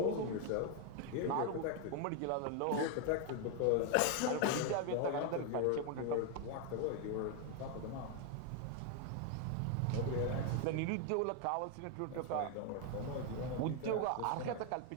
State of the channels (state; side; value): different; both; correlation 0.01